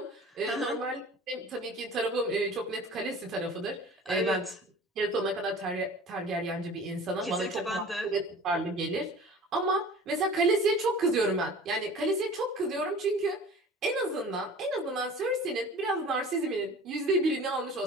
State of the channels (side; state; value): both; normal; correlation 0.42